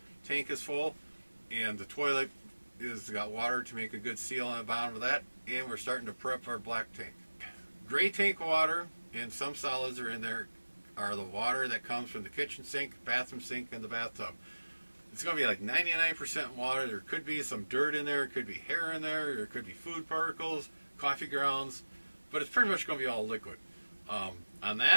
tank is full, and the toilet is got water to make a good seal on the bottom of that, and we're starting to prep our black tank. Gray tank water, and some solids are in there, are the water that comes from the kitchen sink, bathroom sink, and the bathtub. It's going to be like 99% water. There could be some dirt in there, it could be hair in there, there could be food particles, coffee grounds, but it's pretty much going to be all liquid. On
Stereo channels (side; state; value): both; inverted; correlation -1.00